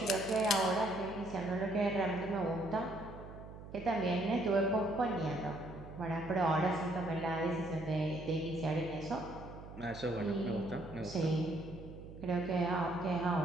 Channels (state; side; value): noise; right; hum, 14 dB below the sound